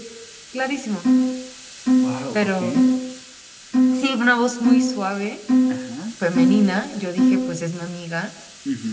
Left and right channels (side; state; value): both; identical; correlation 1.00